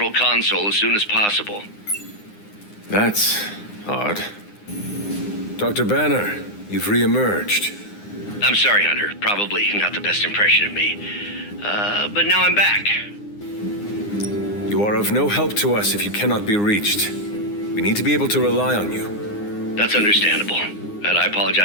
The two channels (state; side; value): late; right; 9.7 ms